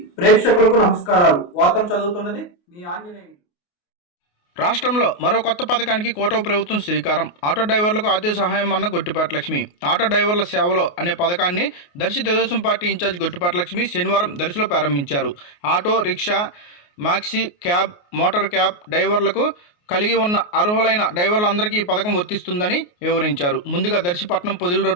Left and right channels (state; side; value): late; right; 28 ms